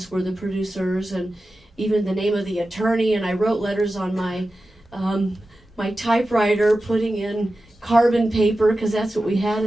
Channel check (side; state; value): both; normal; correlation 0.94